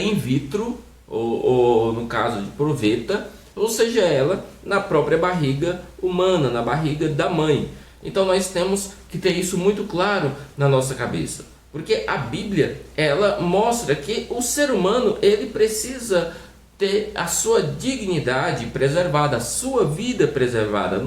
vitro, ou no caso de proveta, ou seja ela na própria barriga humana, na barriga da mãe. Então nós temos que ter isso muito claro na nossa cabeça, porque a Bíblia, ela mostra que o ser humano, ele precisa ter a sua dignidade preservada, a sua vida preservada.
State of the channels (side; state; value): both; identical; correlation 1.00